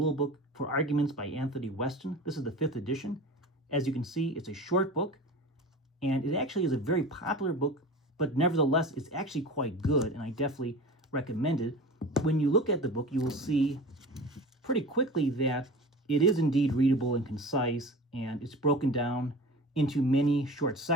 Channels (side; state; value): both; normal; correlation 0.35